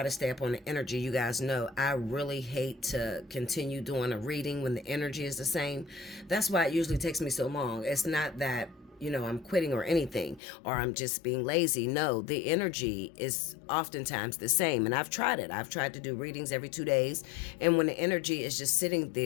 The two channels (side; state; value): right; drops out; at 10.4 s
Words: to stay up on the energy. You guys know I really hate to continue doing a reading when the energy is the same. That's why it usually takes me so long. It's not that, I'm quitting or anything, or I'm just being lazy. No, the energy is oftentimes the same. And I've tried it. I've tried to do readings every 2 days. And when the energy is just sitting